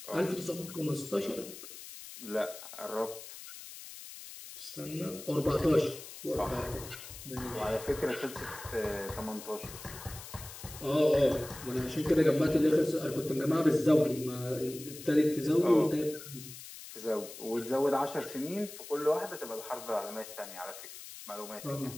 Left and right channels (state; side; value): noise; left; hiss, 13 dB below the sound